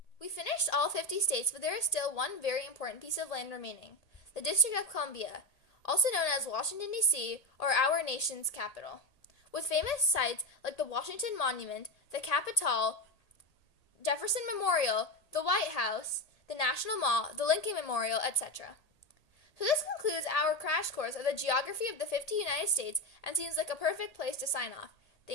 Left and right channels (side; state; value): right; late; 1.8 ms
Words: We finished all 50 states, but there is still one very important piece of land remaining, the District of Columbia, also known as Washington, D.C., or our nation's capital, with famous sites like the Washington Monument, the Capitol, Jefferson Memorial, the White House, the National Mall, the Lincoln Memorial, etc. So this concludes our crash course of the geography of the 50 United States and seems like a perfect place to sign off.